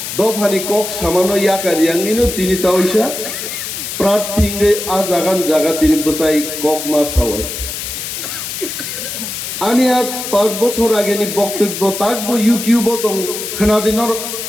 দফানি কক সামানো ইয়াকারিয়াঙ্গিনো তিনি তাওইসা প্রার্থীঙ্গে আ জাগান জাগা তিনি বসাই কক মাস হাওয়াই आनी 5 বছর আগেनि বক্তব্য তাকবো ইউটিউব দं खोनादिनर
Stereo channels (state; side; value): noise; left; hiss, 6 dB below the sound